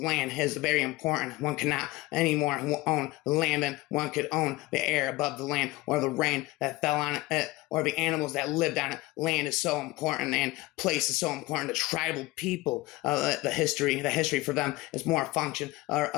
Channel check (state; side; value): quieter; right; 20.0 dB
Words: is very important. One cannot anymore own the land, and one could own the air above the land, or the rain that fell on it, or the animals that lived on it. Land is so important, and place is so important to tribal people. The history for them is more a function